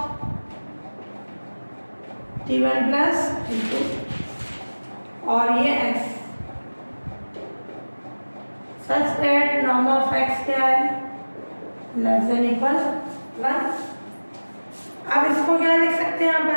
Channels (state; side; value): inverted; both; correlation -1.00